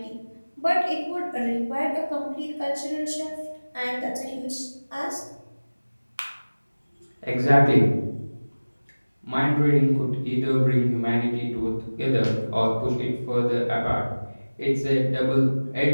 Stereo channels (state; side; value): inverted; both; correlation -1.00